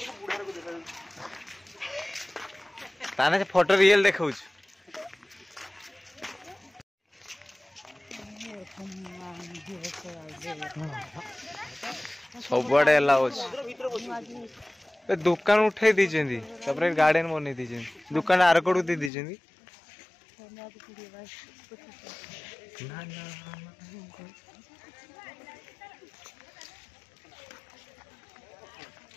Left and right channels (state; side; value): drops out; right; at 19.1 s